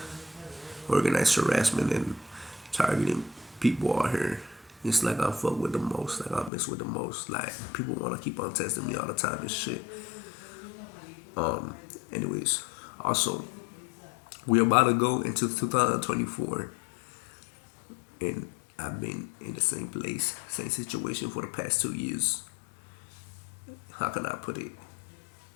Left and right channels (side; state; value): right; drops out; at 6.5 s